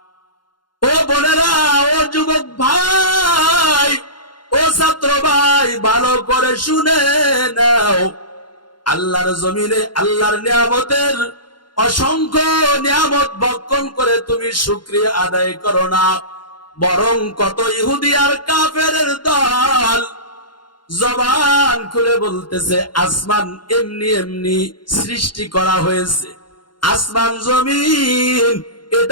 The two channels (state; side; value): late; right; 0.71 ms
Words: ও বোনেরা, ও যুবক ভাই, ও ছাত্র ভাই, ভালো করে শুনে নাও। আল্লাহর জমিনে আল্লাহর নিয়ামতের অসংখ্য নিয়ামত ভক্ষণ করে তুমি শুকরিয়া আদায় করো না, বরং কত ইহুদি আর কাফেরের দল জবান খুলে বলতেছে আসমান এমনি এমনি সৃষ্টি করা হয়েছে, আসমান জমিন